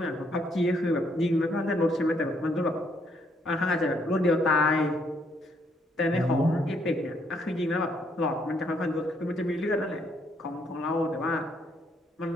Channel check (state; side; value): normal; both; correlation 0.71